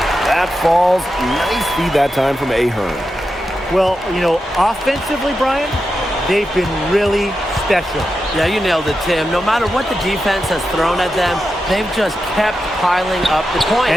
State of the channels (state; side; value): normal; both; correlation 0.89